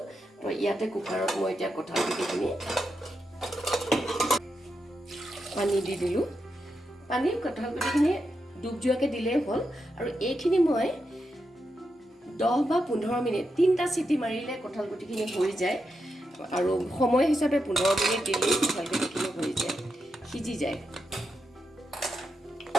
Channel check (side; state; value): both; normal; correlation 0.86